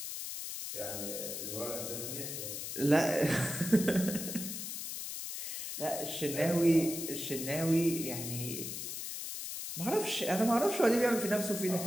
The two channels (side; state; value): left; noise; hiss, 6 dB below the sound